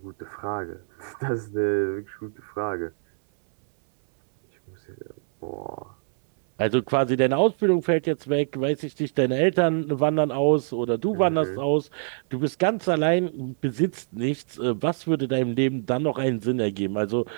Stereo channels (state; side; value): silent; left; 62 dB below the other